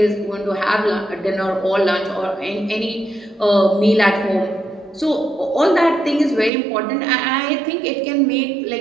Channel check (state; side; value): drops out; left; at 6.5 s